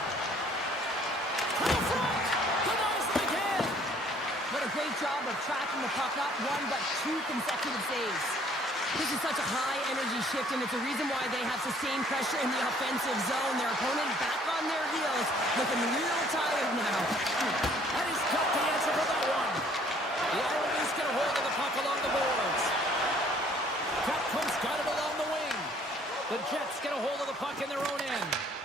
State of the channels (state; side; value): normal; both; correlation 0.59